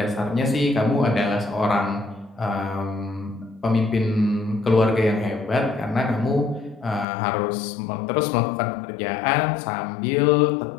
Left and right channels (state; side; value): drops out; right; at 7.1 s